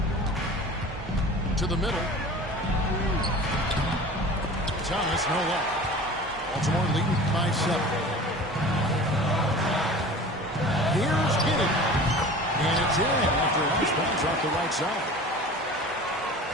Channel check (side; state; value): both; normal; correlation 0.39